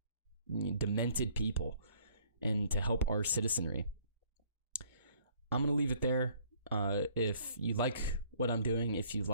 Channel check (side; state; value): both; inverted; correlation -0.60